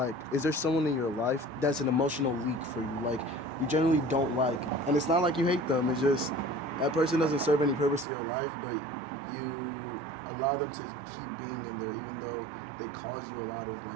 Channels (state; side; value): drops out; left; at 8.1 s